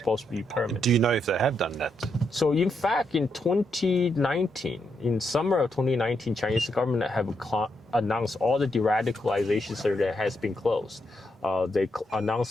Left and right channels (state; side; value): normal; both; correlation 0.80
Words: to be permanent. Do you know if they have done that? So in fact, in 2019, in summer of 2019, Chinese government have announced all the de-radicalization center has been closed. They